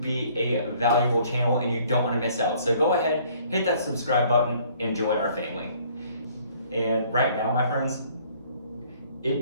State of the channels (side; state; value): both; inverted; correlation -0.59